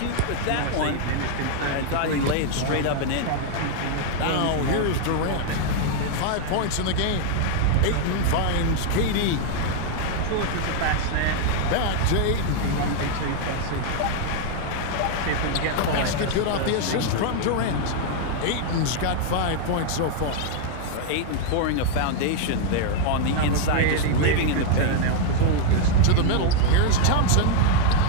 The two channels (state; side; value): different; both; correlation 0.00